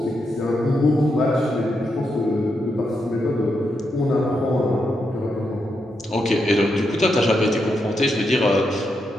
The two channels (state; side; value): normal; both; correlation 0.83